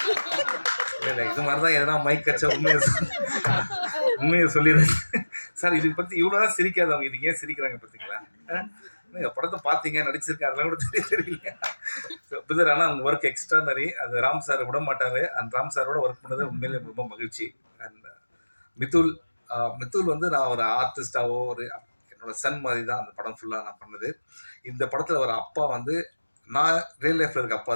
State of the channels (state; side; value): inverted; both; correlation -1.00